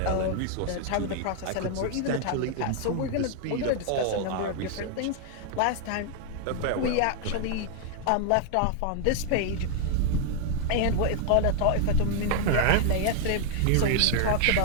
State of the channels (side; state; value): both; different; correlation 0.00